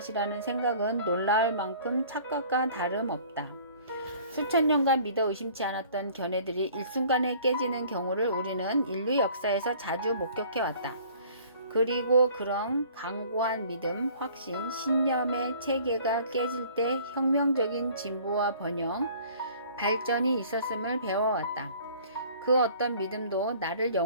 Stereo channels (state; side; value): inverted; both; correlation -0.51